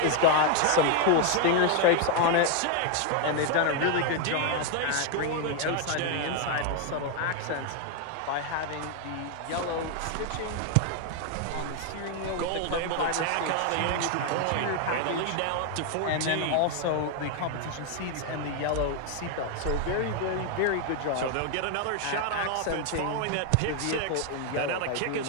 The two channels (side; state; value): both; different; correlation 0.01